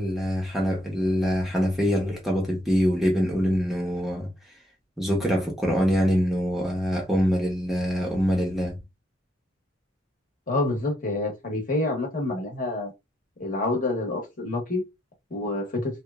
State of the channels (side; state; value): both; normal; correlation 0.76